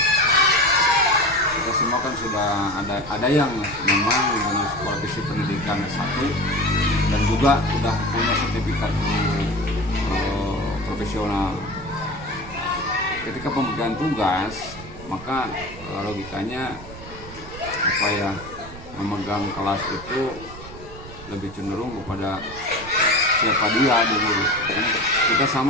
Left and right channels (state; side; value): noise; right; rumble, 15 dB below the sound